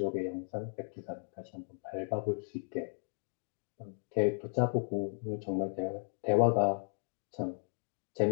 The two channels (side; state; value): right; silent; 54 dB below the other